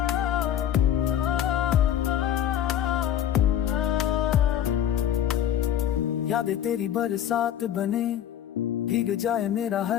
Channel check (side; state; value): right; quieter; 10.6 dB